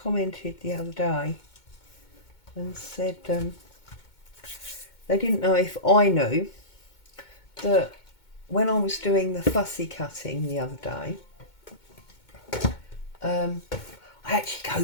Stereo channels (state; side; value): late; right; 2.2 ms